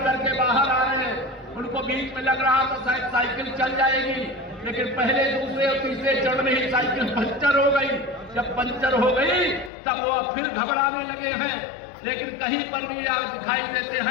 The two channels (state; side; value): drops out; right; at 9.7 s